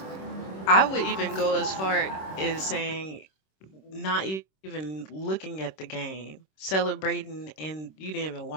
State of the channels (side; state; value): right; late; 26 ms